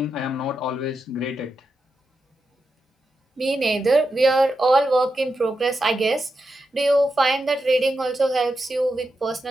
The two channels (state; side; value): normal; both; correlation 0.87